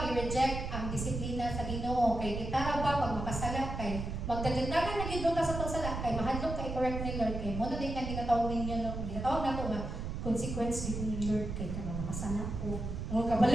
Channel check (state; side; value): noise; right; rumble, 5 dB below the sound